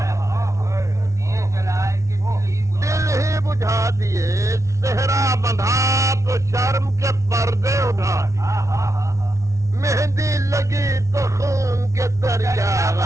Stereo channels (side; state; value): left; late; 0.14 ms